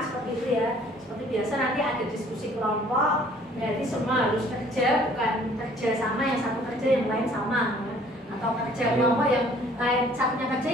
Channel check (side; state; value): both; normal; correlation 0.56